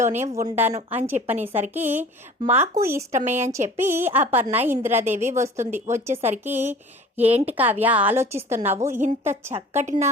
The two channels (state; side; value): normal; both; correlation 0.45